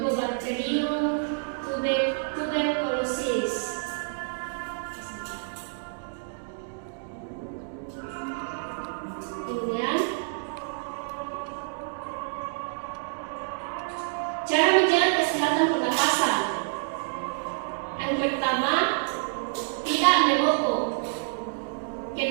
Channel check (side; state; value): left; silent; digital silence